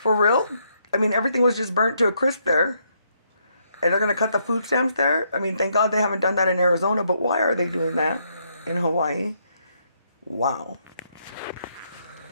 real? I mean, everything was just burnt to a crisp there. And they're going to cut the food stamps there? I mean, thank God they haven't done that in Arizona, but why are they doing that in Hawaii? Wow.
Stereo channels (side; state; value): both; inverted; correlation -0.74